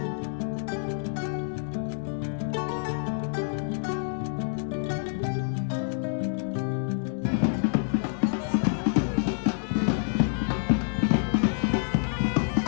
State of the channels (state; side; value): silent; right; digital silence